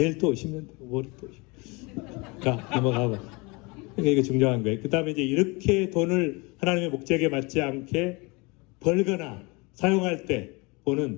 또 오시면 되고, 월요일 또 오시면. 자, 넘어가봐. 그러니까 이거 중요한 거예요. 그 다음에 이제 이렇게 돈을 하나님의 목적에 맞지 않게 벌거나 사용할 때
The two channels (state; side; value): quieter; right; 27.1 dB